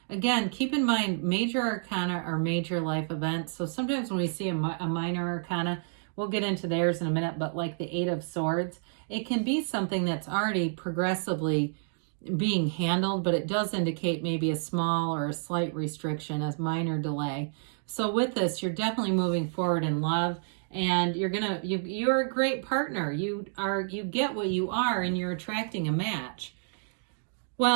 keep in mind, major arcana are major life events. So sometimes when we see a minor arcana, we'll get into theirs in a minute, but like the Eight of Swords, it can be something that's already progressively being handled, but it does indicate maybe a small or a slight restriction, a minor delay. So with this, you're definitely moving forward in love, and you're a great partner. You get what you are, and you're attracting a match.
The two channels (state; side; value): silent; left; digital silence